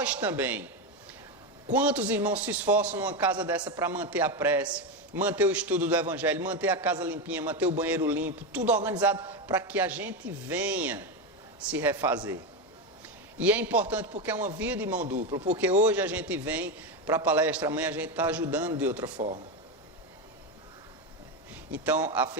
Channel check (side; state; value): both; normal; correlation 0.12